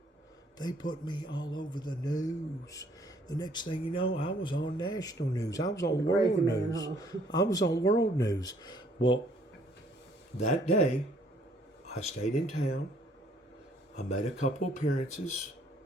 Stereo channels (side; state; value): both; normal; correlation 0.63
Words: They put me all over the news. The next thing you know, I was on national news. I was on world news. I was on world news. Well, that day, I stayed in town. I made a couple appearances.